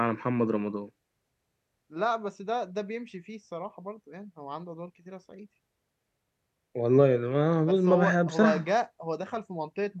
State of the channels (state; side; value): identical; both; correlation 1.00